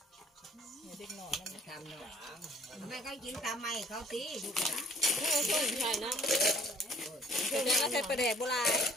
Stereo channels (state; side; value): normal; both; correlation 0.58